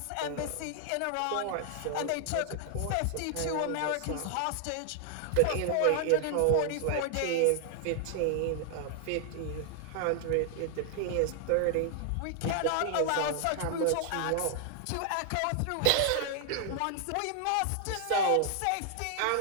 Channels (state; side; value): different; both; correlation 0.00